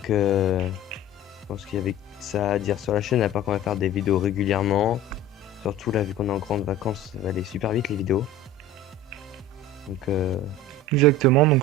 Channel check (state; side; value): normal; both; correlation 0.38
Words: je pense qu'il y avait ça à dire sur la chaîne, à part qu'on va faire des vidéos régulièrement. Surtout là, vu qu'on est en grande vacances, ça va aller super vite les vidéos. Donc, Exactement, donc